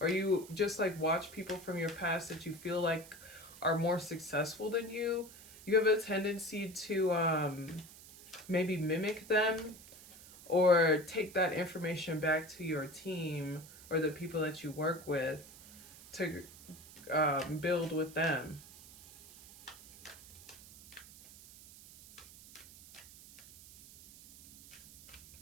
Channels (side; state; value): right; noise; hiss, 19 dB below the sound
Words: or you just like watch people from your past that you feel like are more successful than you have a tendency to maybe mimic them or take that information back to your team or the people that you work with to build with them.